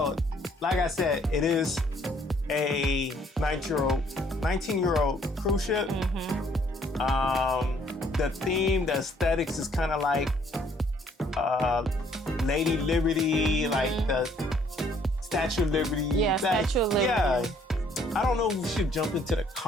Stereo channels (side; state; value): both; normal; correlation 0.63